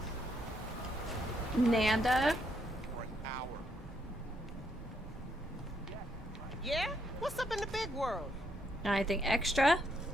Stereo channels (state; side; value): normal; both; correlation 0.75